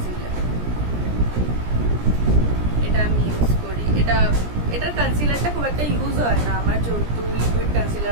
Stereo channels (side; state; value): left; late; 17 ms